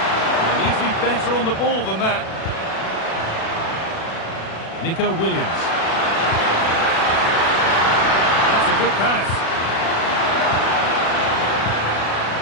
They need to be better on the ball than that. Nico Williams. That's a good pass.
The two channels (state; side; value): late; right; 36 ms